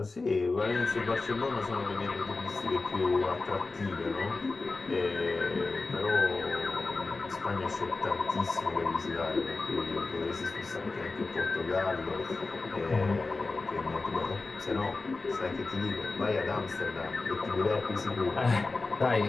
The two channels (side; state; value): right; quieter; 3.7 dB